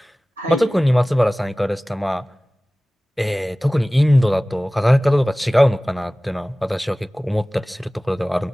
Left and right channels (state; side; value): normal; both; correlation 0.98